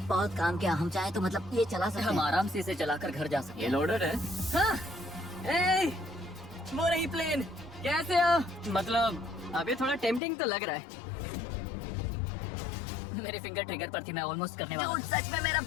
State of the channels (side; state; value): right; drops out; at 10.2 s